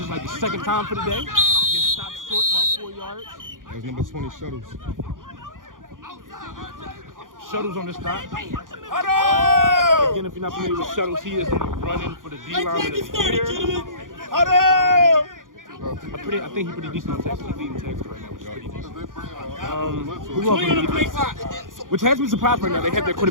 like the second time for the day. Gets stopped short about 4 yards. That was number 20 Shuttles. Shuttles on the stop. Again, if you're not familiar with Shuttles, he is running for the D line in the theater. I think he's pretty decent on tackle. He's leading tackles right now, which is pretty decent. Who else on the defense? Which has me surprised right now. They have their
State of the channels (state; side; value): late; left; 0.89 ms